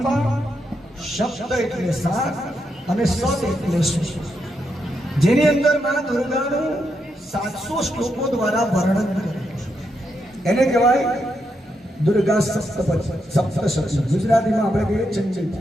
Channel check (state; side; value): normal; both; correlation 0.82